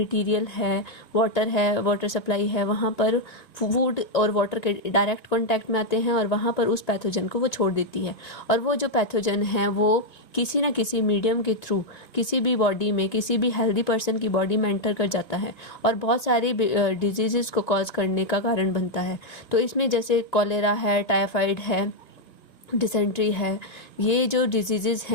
है, वाटर सप्लाई है, वहाँ पर फूड और वाटर के डायरेक्ट कांटेक्ट में आते हैं और वहाँ पर उस पैथोजन को वो छोड़ देती है। और वो जो पैथोजन है वो किसी न किसी मीडियम के थ्रू किसी भी बॉडी में, किसी भी हेल्दी पर्सन की बॉडी में एंटर कर जाता है और बहुत सारी डिजीज़ को कॉज करने का कारण बनता है। तो इसमें जैसे कॉलेरा है, टाइफाइड है, डिसेंट्री है, ये जो डिजीज़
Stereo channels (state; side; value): late; right; 2.3 ms